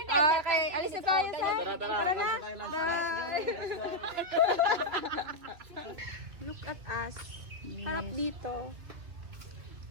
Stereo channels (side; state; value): left; late; 3.0 ms